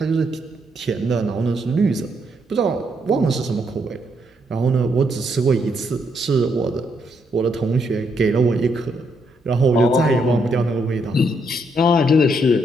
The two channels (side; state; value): both; normal; correlation 0.76